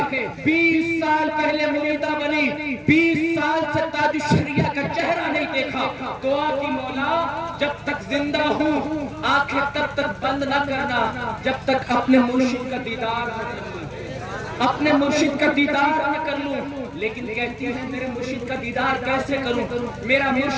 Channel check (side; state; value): both; identical; correlation 1.00